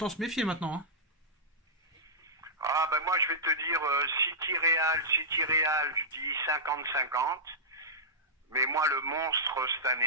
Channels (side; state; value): both; normal; correlation -0.13